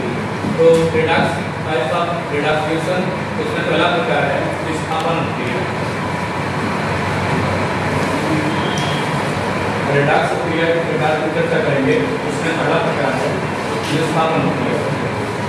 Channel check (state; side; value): identical; both; correlation 1.00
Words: तो redox types of redox reaction, इसमें पहला प्रकार है विस्थापन प्रक्रिया। रेडॉक्स प्रक्रिया के प्रकार की चर्चा करेंगे, उसमें पहला प्रकार है विस्थापन प्रक्रिया।